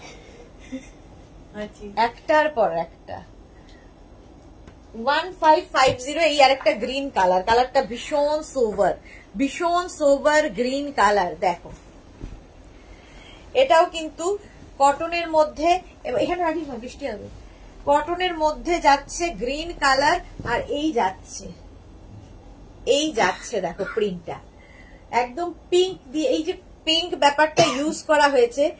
একটার পর একটা। 1550। এই আর একটা গ্রিন কালার, কালারটা ভীষণ সোবার গ্রিন কালার। দেখো, এটাও কিন্তু কটনের মধ্যে, এখানে রাখিস না, বৃষ্টি হবে। কটনের মধ্যে যাচ্ছে গ্রিন কালার, আর এই যাচ্ছে দেখো প্রিন্টটা একদম পিঙ্ক দিয়ে। এই যে পিঙ্ক ব্যাপারটা ইউজ করা হয়েছে,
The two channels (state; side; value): identical; both; correlation 1.00